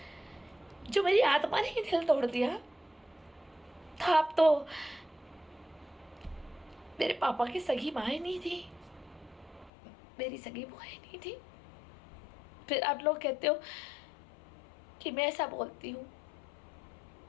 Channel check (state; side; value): drops out; right; at 9.7 s